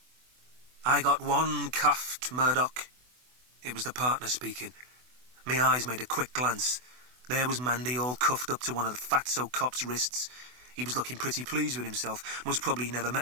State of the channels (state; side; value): late; left; 24 ms